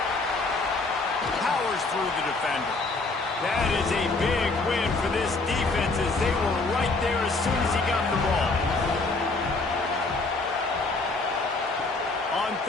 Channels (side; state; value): right; quieter; 3.5 dB